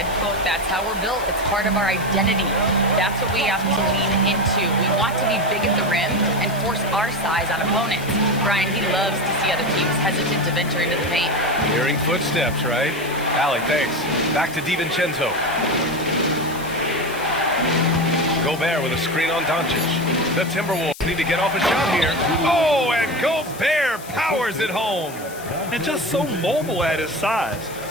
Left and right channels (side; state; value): left; noise; hiss, 16 dB below the sound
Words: quote, "That's how we're built. It's part of our identity. That's what we have to lean into. We want to be big at the rim and force our size on opponents." Brian, he loves to see other teams hesitant to venture into the paint. Hearing footsteps, right? Allie, thanks. Back to DiVincenzo. Gobert with a screen on Doncic. The Timberwolves need to get off a shot here. Oh, and Gobert powers it home. And just so mobile at his size.